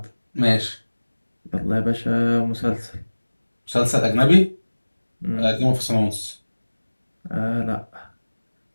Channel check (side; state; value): both; inverted; correlation -1.00